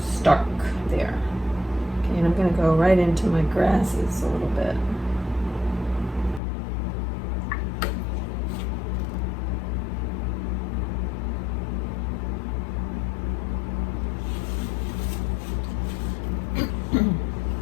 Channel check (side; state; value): right; drops out; at 6.4 s